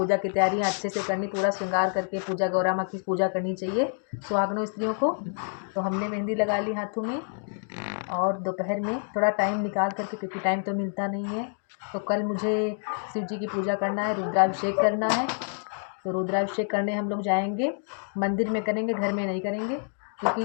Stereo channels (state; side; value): silent; right; 56 dB below the other